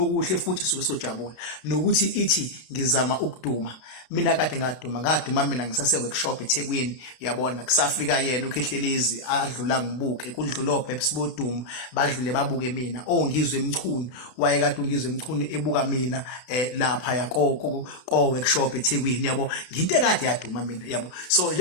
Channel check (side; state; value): right; late; 32 ms